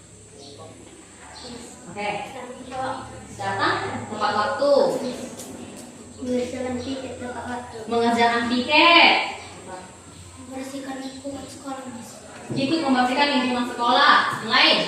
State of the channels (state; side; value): identical; both; correlation 1.00